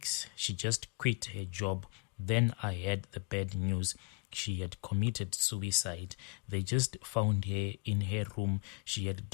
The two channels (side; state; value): right; quieter; 31.1 dB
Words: she just quit her job. Then I had the bad news. she had committed suicide. They just found her in her room. She had